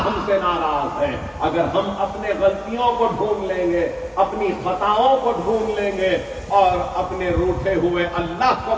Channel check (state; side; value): identical; both; correlation 1.00